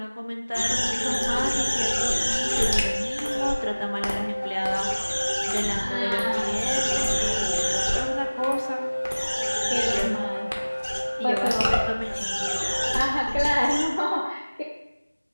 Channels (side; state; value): both; inverted; correlation -1.00